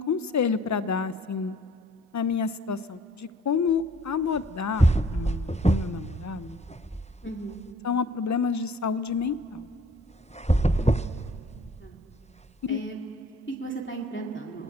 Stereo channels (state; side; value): normal; both; correlation 0.55